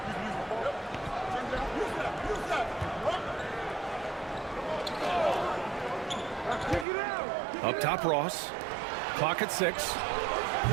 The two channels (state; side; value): drops out; left; at 6.9 s